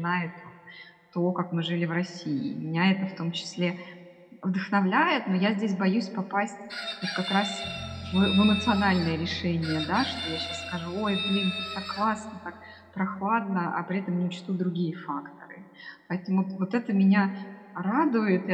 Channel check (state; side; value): identical; both; correlation 1.00